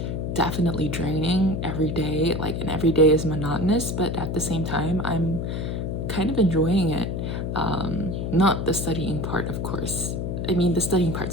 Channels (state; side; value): noise; left; hum, 2 dB below the sound